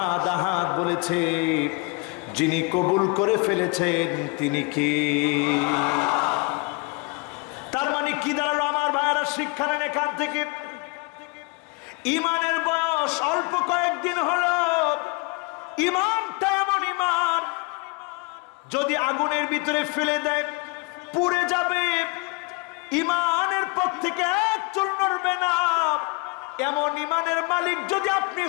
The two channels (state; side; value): quieter; right; 28.7 dB